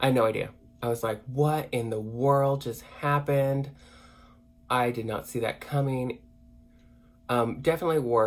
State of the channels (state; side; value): identical; both; correlation 1.00